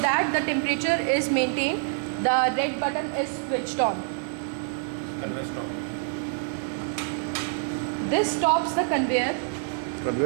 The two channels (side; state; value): left; silent; 61 dB below the other